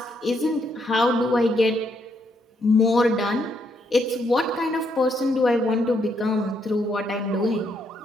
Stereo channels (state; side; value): normal; both; correlation 0.75